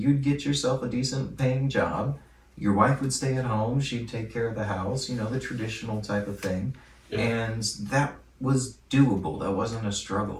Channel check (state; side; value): identical; both; correlation 1.00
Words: get yourself a decent paying job. Your wife would stay at home. She'd take care of the house, you know, the traditional type of thing. Yeah. And that was doable. That wasn't a